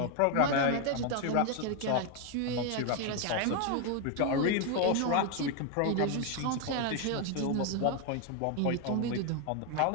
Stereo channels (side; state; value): both; different; correlation 0.01